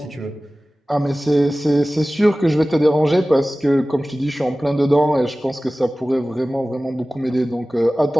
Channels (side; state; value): both; normal; correlation 0.97